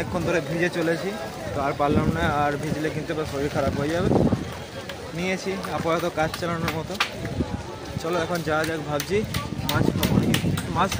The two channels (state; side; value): identical; both; correlation 1.00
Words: ধরে ভিজে চলেছি, তো আর পারলাম না, আর ভিজলে কিন্তু আবার শরীর খারাপ হয়ে যাবে। নিয়েছি আপাতত কাজ চালানোর মতো। চলো এখন যাওয়া যাক। ভাবছি মাছ খাবো নাকি, মাছ